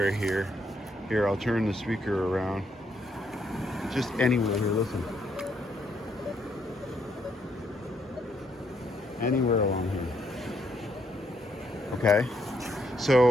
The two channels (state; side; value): normal; both; correlation 0.74